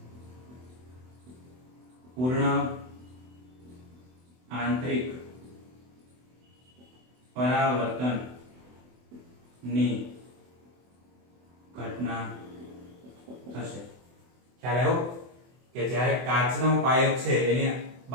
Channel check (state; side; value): late; left; 24 ms